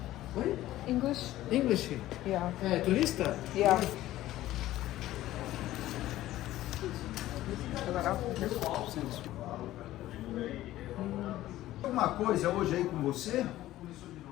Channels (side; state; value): right; quieter; 15.0 dB